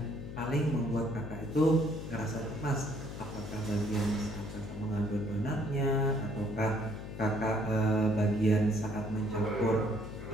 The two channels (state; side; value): noise; left; hum, 9 dB below the sound